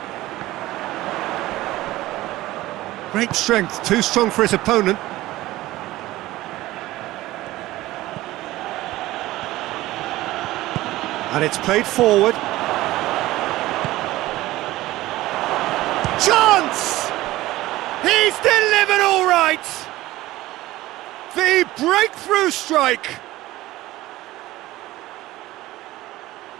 Great strength, too strong for his opponent. And it's played forward. Chance! He's delivered all right! The breakthrough strike!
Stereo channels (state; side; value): quieter; left; 17.1 dB